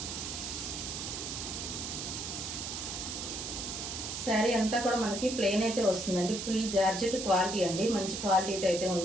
శారీ అంతా కూడా మనకి ప్లెయిన్ అయితే వస్తుందండి. ఫుల్ జార్జెట్ క్వాలిటీ అండి, మంచి క్వాలిటీ అయితే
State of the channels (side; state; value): right; noise; hiss, 5 dB below the sound